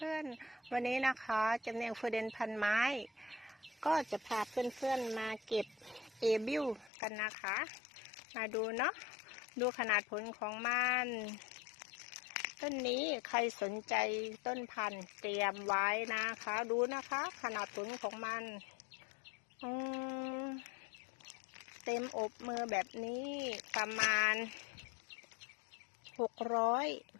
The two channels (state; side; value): drops out; right; at 6.9 s